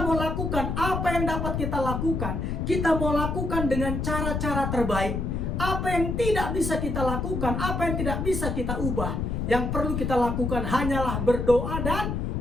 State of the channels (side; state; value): left; noise; rumble, 2 dB below the sound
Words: mau lakukan apa yang dapat kita lakukan. Kita mau lakukan dengan cara-cara terbaik. Apa yang tidak bisa kita lakukan, apa yang tidak bisa kita ubah, yang perlu kita lakukan hanyalah berdoa dan